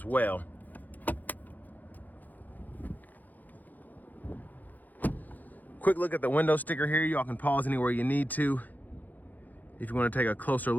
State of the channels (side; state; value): right; late; 0.083 ms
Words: well. Quick look at the window sticker here. Y'all can pause anywhere you need to if you want to take a closer